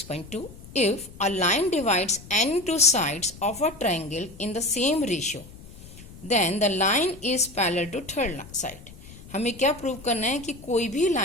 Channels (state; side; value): noise; left; rumble, 18 dB below the sound